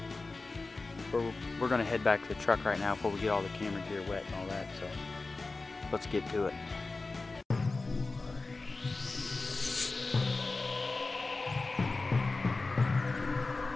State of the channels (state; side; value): quieter; right; 3.6 dB